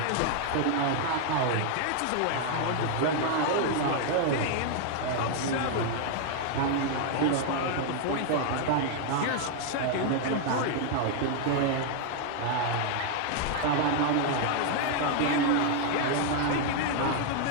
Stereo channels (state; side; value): different; both; correlation 0.00